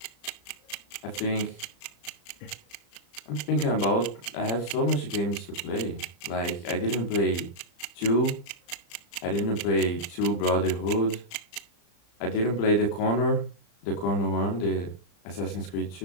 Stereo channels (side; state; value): right; late; 35 ms